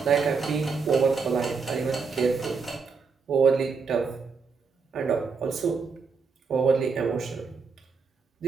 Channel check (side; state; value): left; quieter; 5.1 dB